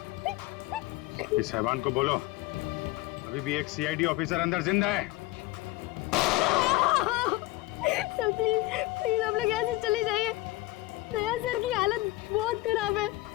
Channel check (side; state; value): right; quieter; 18.8 dB